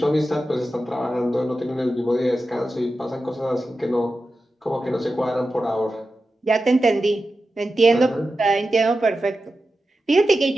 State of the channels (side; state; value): both; normal; correlation 0.92